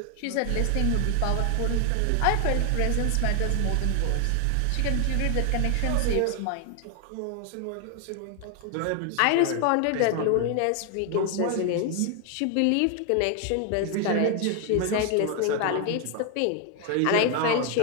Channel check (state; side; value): different; both; correlation 0.00